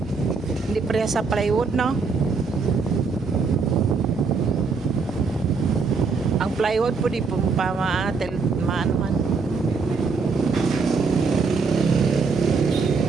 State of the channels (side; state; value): left; quieter; 4.8 dB